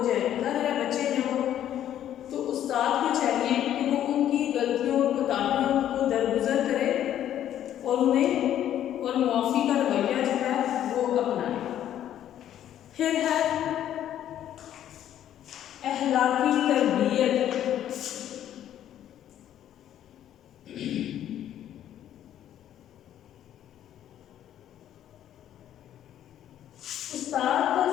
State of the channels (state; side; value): quieter; right; 11.2 dB